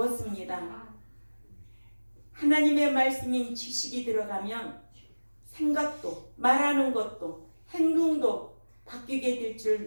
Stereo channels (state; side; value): inverted; both; correlation -1.00